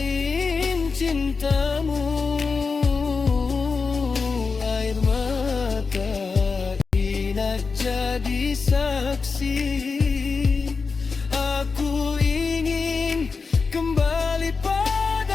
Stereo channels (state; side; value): quieter; right; 4.7 dB